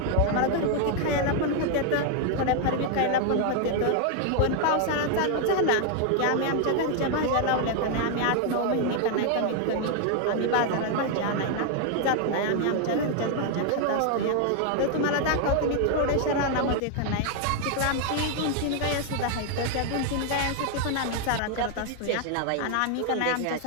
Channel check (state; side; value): different; both; correlation 0.00